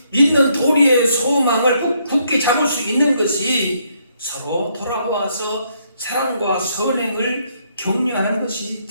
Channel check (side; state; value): both; inverted; correlation -0.72